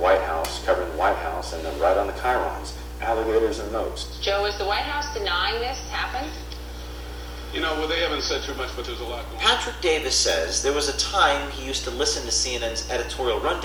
House, covering the White House, and then right on the chyrons, alligators and moats. Joe, is the White House denying this happened? You know, well, they haven't said too much, but there's a lot going on. Patrick Davis says there was a time he used to listen to CNN's editorial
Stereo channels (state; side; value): identical; both; correlation 1.00